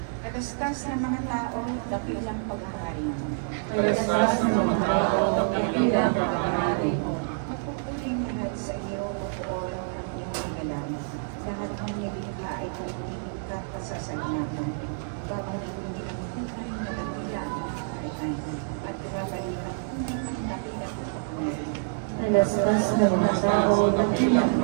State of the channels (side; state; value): left; silent; digital silence